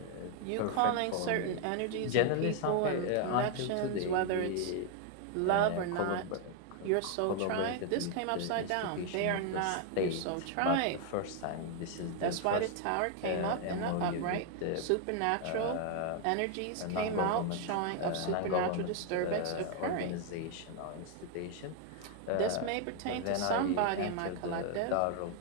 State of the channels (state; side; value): different; both; correlation 0.00